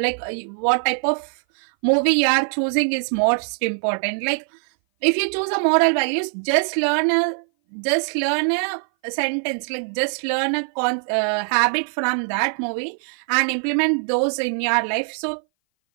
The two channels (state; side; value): silent; left; 58 dB below the other